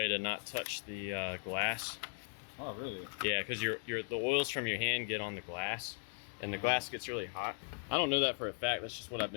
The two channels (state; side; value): silent; right; 53 dB below the other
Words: to not touch the glass. Oh, really? Yeah, because the oils from your hand get on the glass, and the glass gets really hot. I don't know that for a fact. That's just what I've